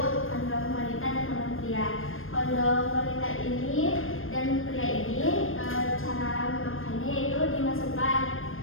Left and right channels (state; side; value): late; right; 0.60 ms